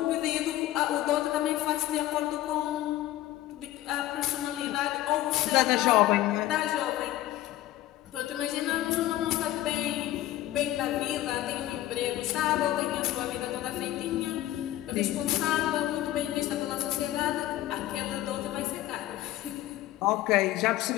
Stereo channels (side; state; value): right; quieter; 14.7 dB